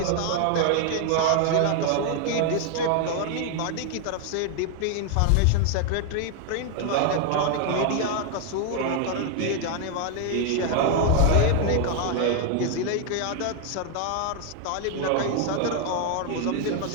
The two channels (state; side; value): different; both; correlation 0.01